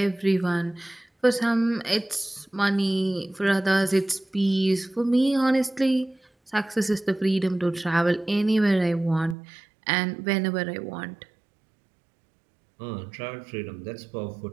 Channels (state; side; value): drops out; left; at 9.3 s